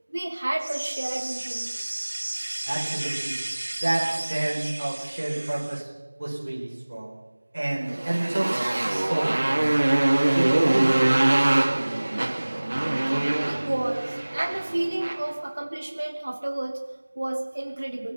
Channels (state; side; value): inverted; both; correlation -1.00